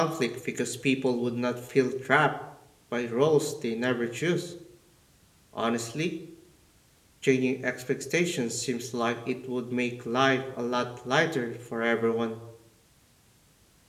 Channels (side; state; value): both; identical; correlation 1.00